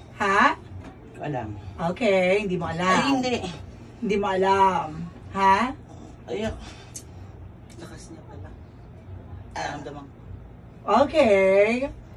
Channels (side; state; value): both; identical; correlation 1.00